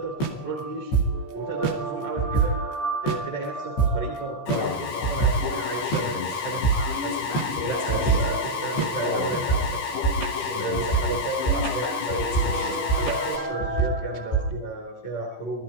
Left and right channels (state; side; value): late; right; 15 ms